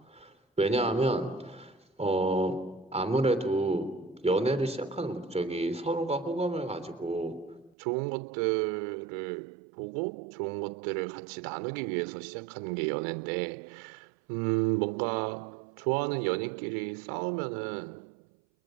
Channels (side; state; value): left; drops out; at 7.8 s